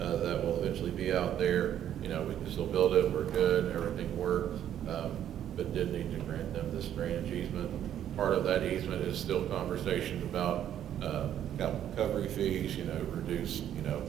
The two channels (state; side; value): quieter; left; 10.6 dB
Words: will eventually be out there. We can still build it, we're good, everything works, but did need to grant them this drainage easement. Part of that easement is still conversations about recovery fees, reduce,